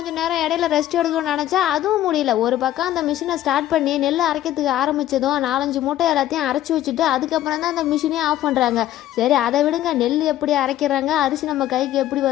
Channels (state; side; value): quieter; right; 13.2 dB